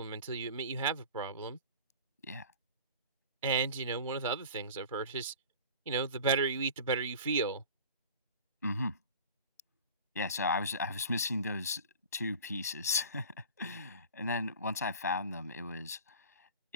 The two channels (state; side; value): inverted; both; correlation -0.39